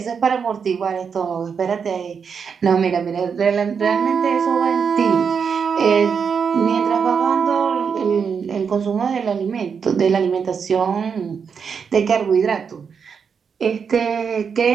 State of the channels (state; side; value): quieter; left; 6.4 dB